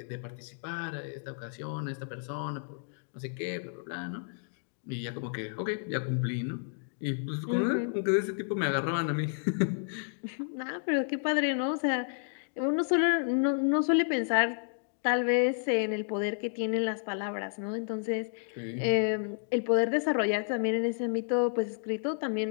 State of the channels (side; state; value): right; silent; digital silence